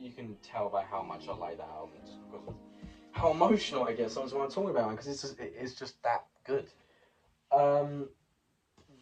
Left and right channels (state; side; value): identical; both; correlation 1.00